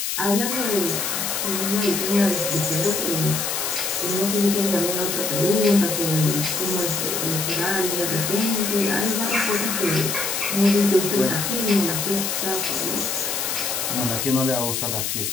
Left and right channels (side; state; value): left; noise; hiss, 1 dB below the sound